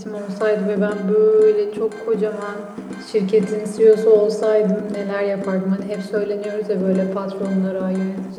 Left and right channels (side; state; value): both; identical; correlation 1.00